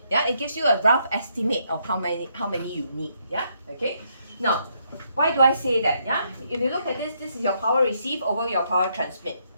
Yeah, it gives you a rough estimate of how many you need. Yeah, okay. Now, why do I say that? Yeah, if you look at this, this is your power receive over your power transmit.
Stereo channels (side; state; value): both; inverted; correlation -0.75